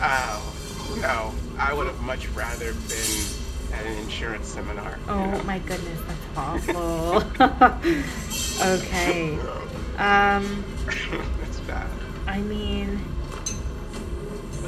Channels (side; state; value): both; identical; correlation 1.00